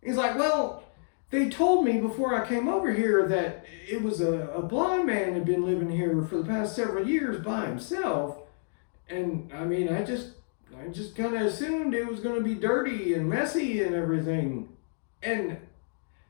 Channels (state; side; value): silent; right; digital silence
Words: He's like, well, they told me before I came over here that it was a blind man had been living here for the past several years by himself. And I mean, I just kind of assumed it was going to be dirty and messy and everything. And